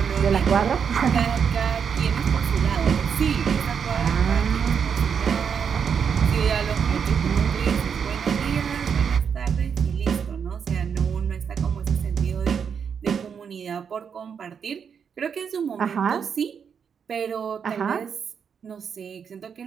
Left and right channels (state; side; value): quieter; left; 7.0 dB